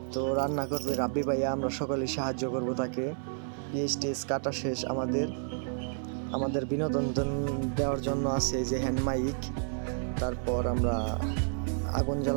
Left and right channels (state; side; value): silent; left; 57 dB below the other